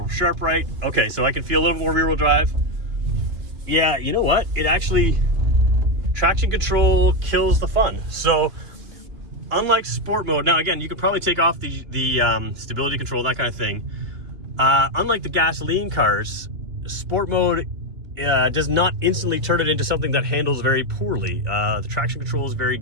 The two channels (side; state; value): left; late; 2.8 ms